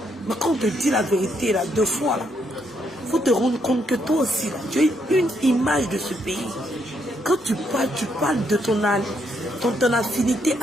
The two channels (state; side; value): normal; both; correlation 0.75